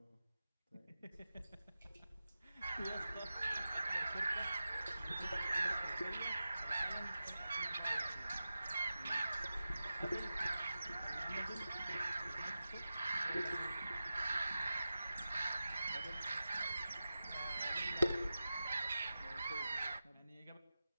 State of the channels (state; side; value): inverted; both; correlation -0.93